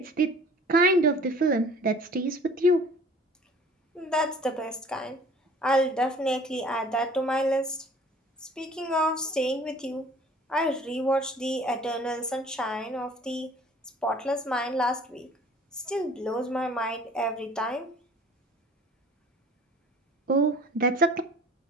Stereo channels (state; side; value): normal; both; correlation 0.49